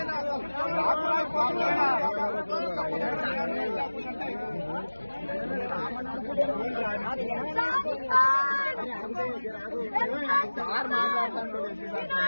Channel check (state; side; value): inverted; both; correlation -1.00